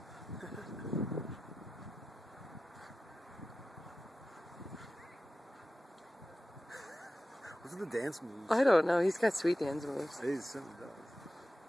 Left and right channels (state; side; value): normal; both; correlation 0.94